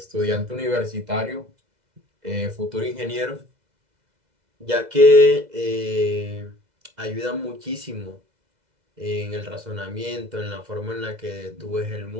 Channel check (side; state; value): left; late; 2.0 ms